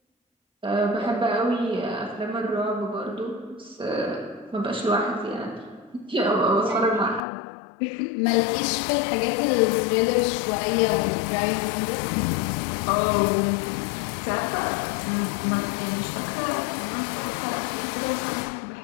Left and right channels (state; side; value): drops out; right; at 7.2 s